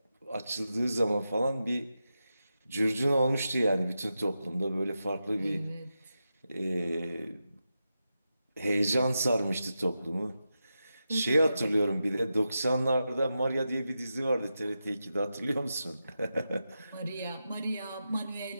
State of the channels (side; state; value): both; inverted; correlation -0.89